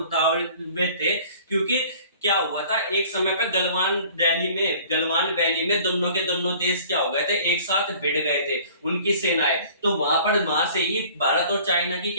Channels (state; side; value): inverted; both; correlation -0.50